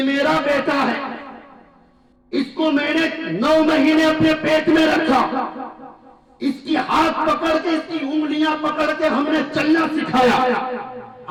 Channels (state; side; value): identical; both; correlation 1.00